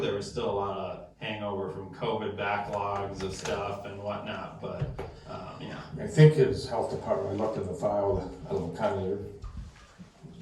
there was still a lot of hangover from COVID backlogs of stuff and whatnot, but, yeah. I think his health department, I looked in the file, I don't know, kind of,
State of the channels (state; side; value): identical; both; correlation 1.00